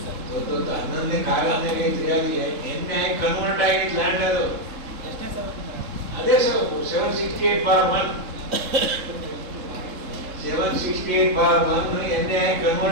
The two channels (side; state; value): left; late; 3.7 ms